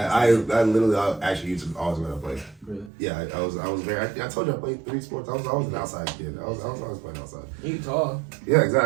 literally actually used to always go to play. Really? Yeah, I was very. I told you I played 3 sports. I was an outside kid. I was always playing outside. You tall. Yeah,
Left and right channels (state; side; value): drops out; left; at 2.9 s